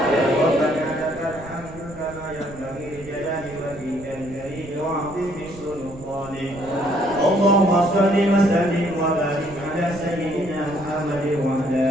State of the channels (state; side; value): noise; right; rumble, 17 dB below the sound